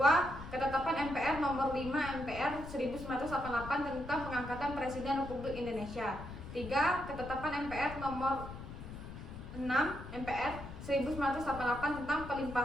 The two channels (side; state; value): left; noise; rumble, 11 dB below the sound